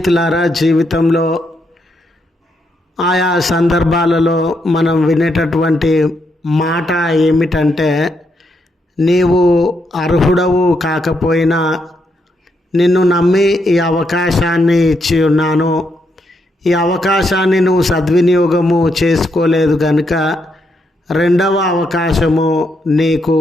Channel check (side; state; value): both; normal; correlation 0.79